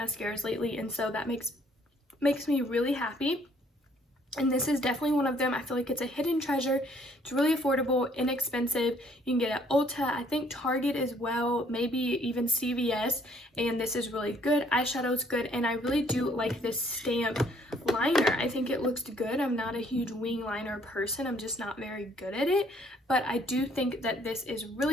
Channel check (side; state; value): both; normal; correlation 0.63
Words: lately, and so that makes me really happy. And this is definitely one of them. I feel like it's a hidden treasure. It's really affordable, inexpensive. You can get it at Ulta, I think Target as well, maybe even CVS. And this is really good. Eyeshadow's good. And I really do like this stamp liner. I think it looks good. I'm not a huge wing liner person. I'm just not very good at it. But I do think that this is